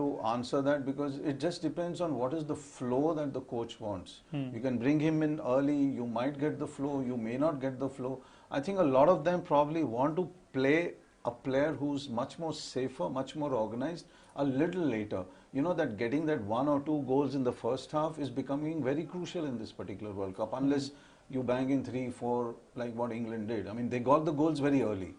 answer that, because it just depends on what is the flow that the coach wants. You can bring him in early, you might get the flow, you may not get the flow. I think a lot of them probably want to play a player who's much more safer, much more organized a little later. That getting that 1 or 2 goals in the first half is becoming very crucial in this particular World Cup, unless you bang in 3, 4 like what England did. I mean, they got the goals very early.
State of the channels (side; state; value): both; identical; correlation 1.00